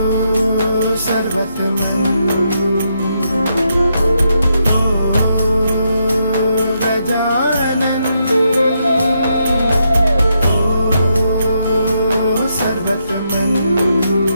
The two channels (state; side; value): inverted; both; correlation -0.80